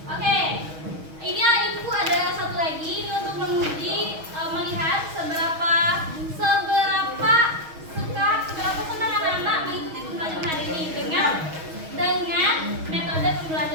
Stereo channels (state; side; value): late; left; 6.3 ms